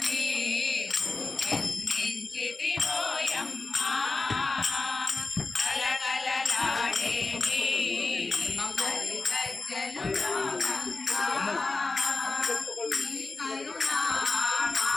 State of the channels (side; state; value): right; quieter; 3.7 dB